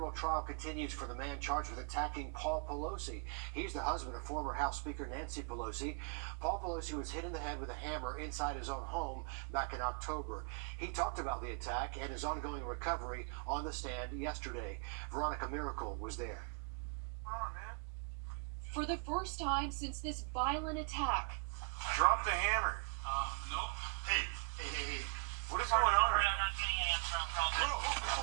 trial continues for the man charged with attacking Paul Pelosi. He's the husband of former House Speaker Nancy Pelosi. Paul Pelosi was hit in the head with a hammer inside his own home back in October. He talked about the attack and his ongoing recovery on the stand yesterday. Veronica Miracle was there. For the first time since this violent attack, Drop the hammer. Nope. Hey. What is going on? I'm not getting an answer on call.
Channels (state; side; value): quieter; left; 37.2 dB